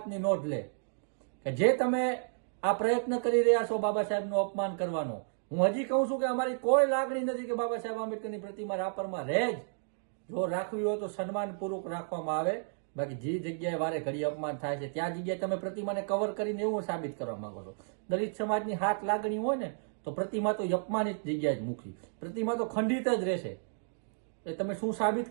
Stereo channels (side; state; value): left; silent; digital silence